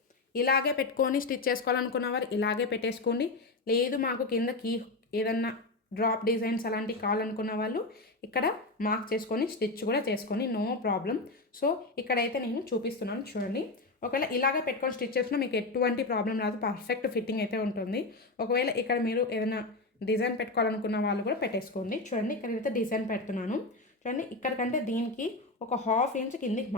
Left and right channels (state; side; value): quieter; right; 3.2 dB